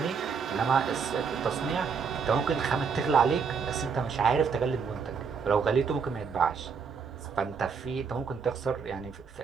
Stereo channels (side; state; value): left; quieter; 5.9 dB